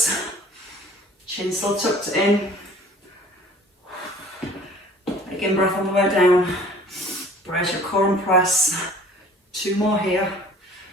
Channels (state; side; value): normal; both; correlation 0.50